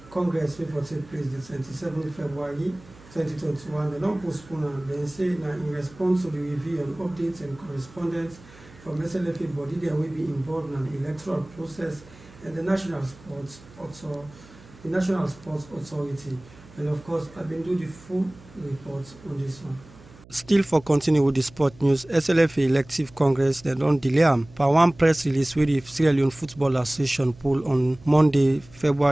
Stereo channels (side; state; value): right; noise; hum, 23 dB below the sound